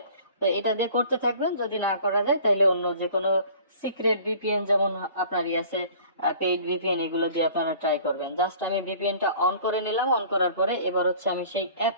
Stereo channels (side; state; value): both; inverted; correlation -0.48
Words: তো এটা দিয়ে করতে থাকবেন, যদি না করা যায় তাহলে অন্য যে কোনো সিক্রেট ভিপিএন যেমন আপনার আছে পেইড ভিপিএন, এগুলো দিয়ে আপনারা ট্রাই করবেন। জাস্ট আমি ভিপিএনটা অন করে নিলাম। অন করার পরে এবার হচ্ছে আমি সেই